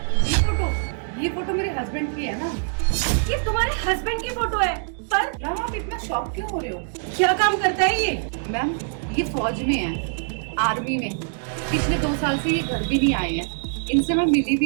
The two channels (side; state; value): left; silent; digital silence